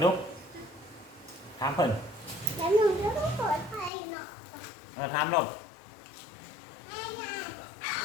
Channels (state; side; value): drops out; right; at 3.9 s